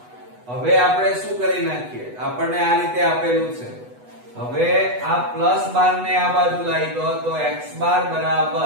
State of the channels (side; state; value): left; late; 8.1 ms